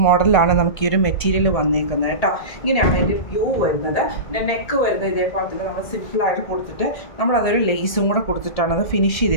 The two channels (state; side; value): late; right; 1.7 ms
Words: മോഡലാണ് നമുക്ക് ഈ ഒരു മെറ്റീരിയൽ വന്നിരിക്കുന്നത് കേട്ടോ. ഇങ്ങനെയാണ് അതിൻ്റെ വ്യൂ വരുന്നത്. പിന്നെ നെക്ക് വരുന്നത് ഇതേപോലെ തന്നെ നമ്മൾ സിമ്പിളായിട്ട് കൊടുത്തിട്ട് നമ്മളതൊരു ലേസും കൂടെ കൊടുത്തിട്ടാണ് അത് ഫിനിഷ്